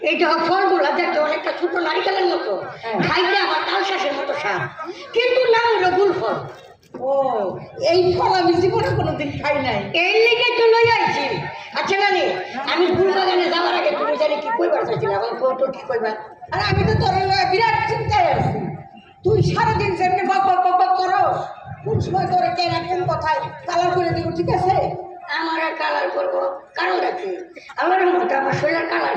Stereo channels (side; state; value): both; identical; correlation 1.00